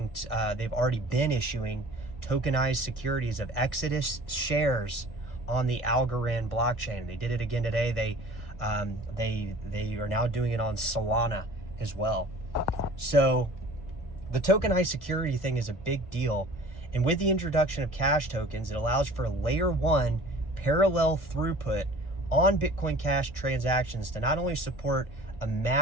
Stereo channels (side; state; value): right; late; 1.7 ms